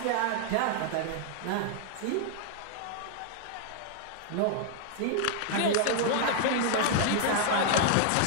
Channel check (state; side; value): different; both; correlation -0.01